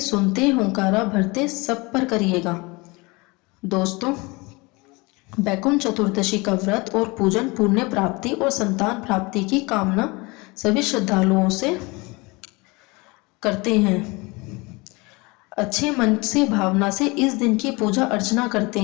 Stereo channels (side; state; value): right; quieter; 25.7 dB